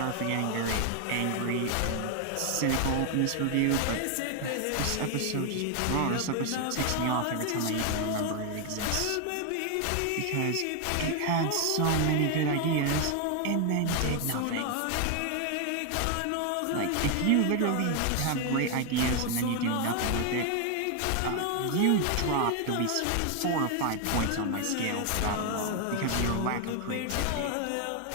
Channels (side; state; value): both; different; correlation 0.01